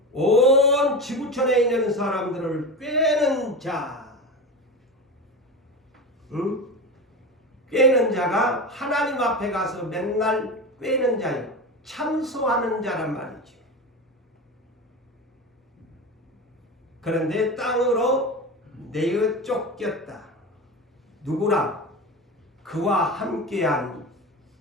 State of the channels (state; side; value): normal; both; correlation 0.25